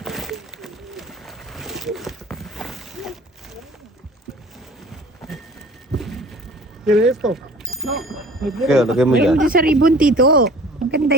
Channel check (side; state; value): both; normal; correlation 0.47